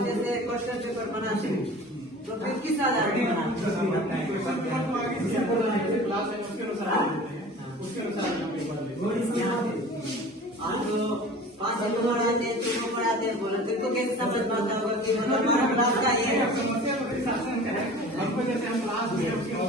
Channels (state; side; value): normal; both; correlation 0.41